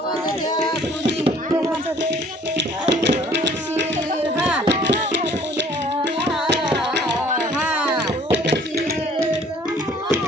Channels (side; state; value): both; normal; correlation 0.56